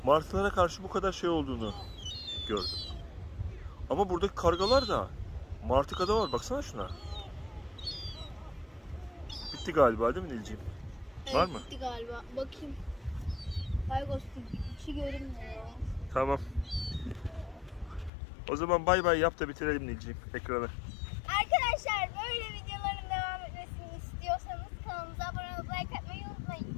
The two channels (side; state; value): right; drops out; at 18.1 s